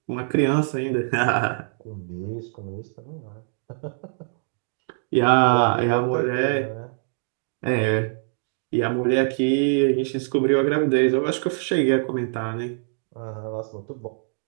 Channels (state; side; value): silent; left; digital silence